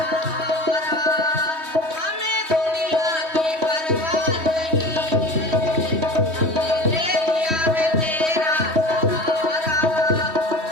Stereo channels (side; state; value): left; late; 3.1 ms